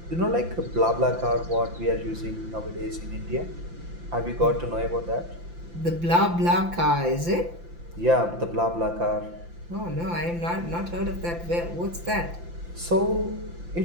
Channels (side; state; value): left; late; 5.8 ms